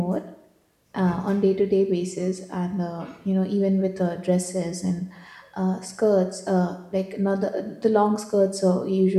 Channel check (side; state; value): both; identical; correlation 1.00